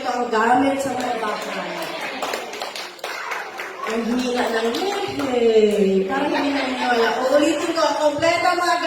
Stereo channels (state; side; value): identical; both; correlation 1.00